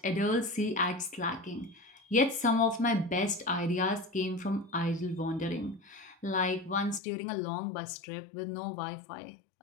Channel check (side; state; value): right; drops out; at 7.0 s